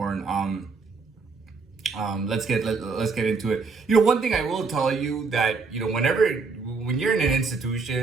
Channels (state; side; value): quieter; left; 4.5 dB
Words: Let's get into it. One thing I will tell you that when you're in an